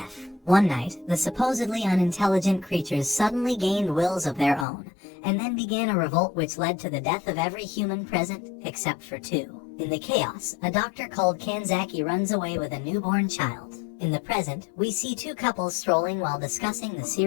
One night, the supposedly unintelligent creatures suddenly gained wills of their own, and then began a revolt which led to the death of every human present, except for two. In the chaos, a doctor called Kanzaki runs away with a newborn child. In the present, we see two couples strolling while discussing the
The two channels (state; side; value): drops out; right; at 4.7 s